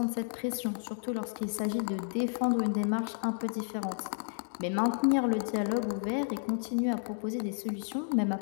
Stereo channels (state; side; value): silent; right; digital silence